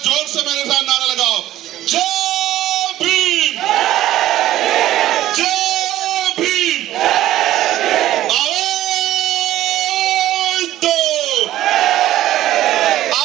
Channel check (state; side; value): quieter; left; 13.8 dB